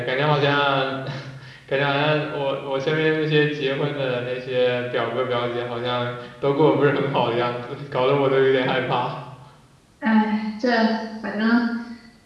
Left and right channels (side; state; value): both; identical; correlation 1.00